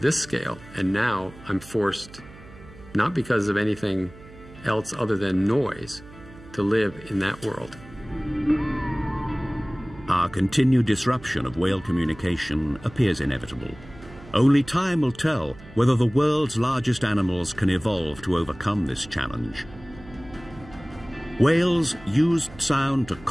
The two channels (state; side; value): noise; right; hum, 19 dB below the sound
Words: scale, and now I'm forced, not because of anything else other than noise, to live in that world. Our continued disruption of whale communication appears inevitable. Only time will tell whether the world's largest animals can evolve to overcome this challenge. Whales used sound to